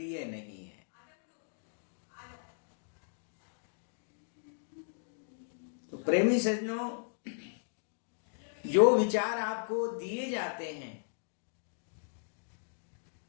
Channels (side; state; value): right; silent; digital silence